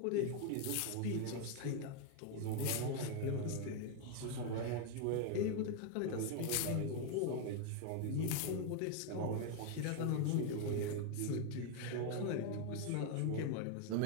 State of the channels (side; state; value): both; different; correlation 0.01